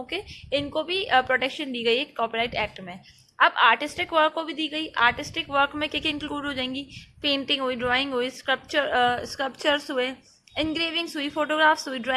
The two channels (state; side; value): identical; both; correlation 1.00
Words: के, इनको भी प्रोटेक्शन दी गई है कॉपीराइट एक्ट में। अब आर्टिस्टिक वर्क को भी दी गई। आर्टिस्टिक वर्क में क्या क्या इंक्लूड हो जाएंगी? पेंटिंग हुई, ड्राइंग हुई, स्कल्पचर्स हुए, इंग्रेविंग्स हुई, फोटोग्राफ्स हुई,